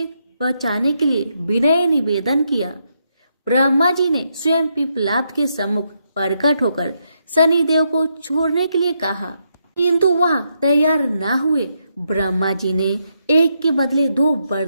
बचाने के लिए विनय निवेदन किया। ब्रह्मा जी ने स्वयं पिप्पलाद के सम्मुख प्रकट होकर शनि देव को छोड़ने के लिए कहा, किंतु वह तैयार न हुए। ब्रह्मा जी ने एक के बदले 2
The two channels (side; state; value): both; inverted; correlation -0.80